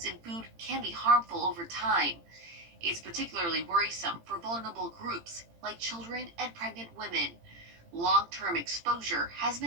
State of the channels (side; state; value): left; late; 18 ms